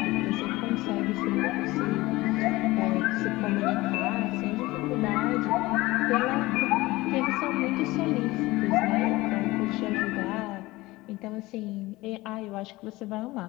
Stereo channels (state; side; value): quieter; right; 19.8 dB